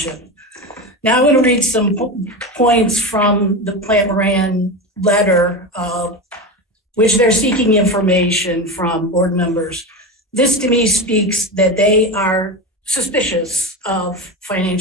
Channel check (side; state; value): both; normal; correlation 0.21